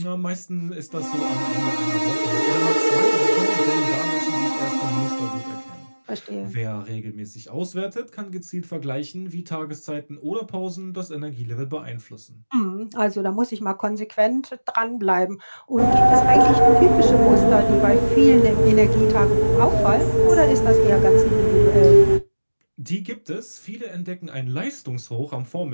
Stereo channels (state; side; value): inverted; both; correlation -1.00